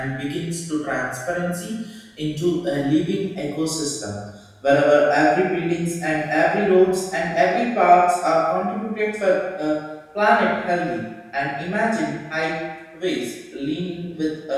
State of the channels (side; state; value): both; identical; correlation 1.00